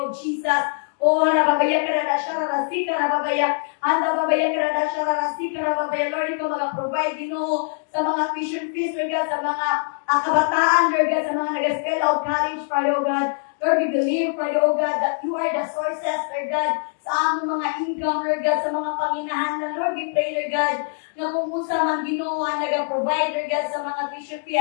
Jesus. Oh, rababaya karada shararasi karababaya. Anda babaya karada shararasi karababaya. Lord, ikaw mag-provide, Ginoo, sa mga tuition fees, Lord God, sa mga kabataan, Lord God, sa mga nag-spell out college, Father, oh God. Lord, we believe, Father, oh God, that you are the sources, Lord God, sa among mga income, Lord God, sa mga panginahanlan. Lord, we pray, Lord God, na kung usa man, Ginoo, ang nag-provide, Lord God, sa mga tuition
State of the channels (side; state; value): right; silent; digital silence